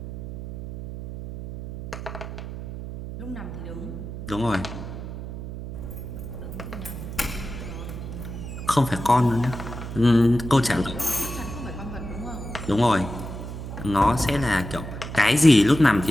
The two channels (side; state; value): right; noise; hum, 9 dB below the sound